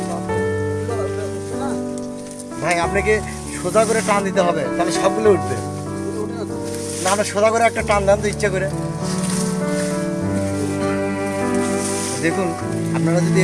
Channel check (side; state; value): both; identical; correlation 1.00